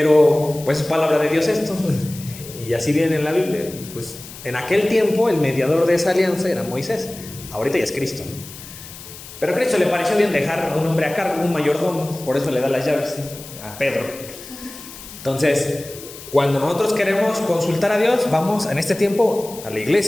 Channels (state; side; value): noise; left; hiss, 15 dB below the sound